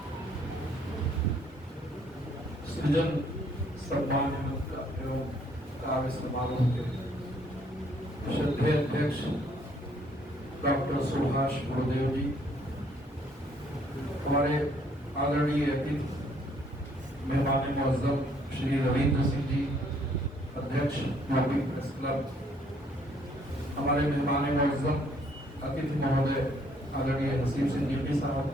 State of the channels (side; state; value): both; normal; correlation 0.65